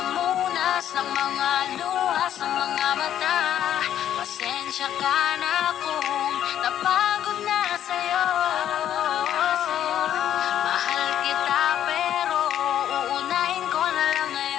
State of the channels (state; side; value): quieter; right; 10.7 dB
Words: ng mga luha sa mga mata. Pasensya ka na kung napagod na sa'yo. Mahal kita pero uunahin ko na lang